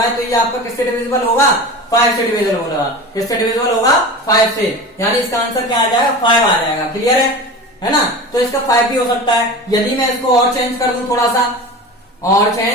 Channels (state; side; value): normal; both; correlation 0.32